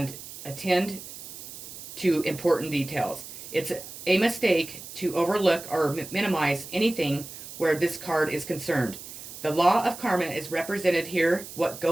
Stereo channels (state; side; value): noise; right; hiss, 13 dB below the sound